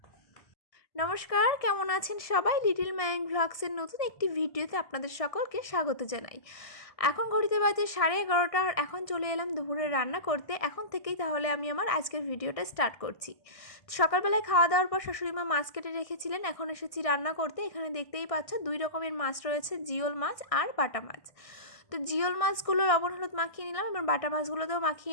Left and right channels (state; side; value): late; right; 1.6 ms